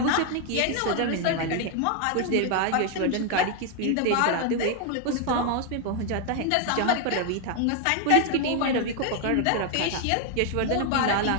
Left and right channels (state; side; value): different; both; correlation 0.00